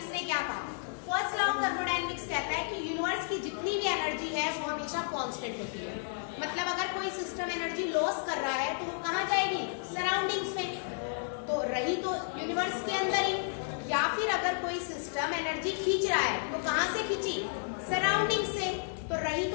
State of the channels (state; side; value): silent; right; digital silence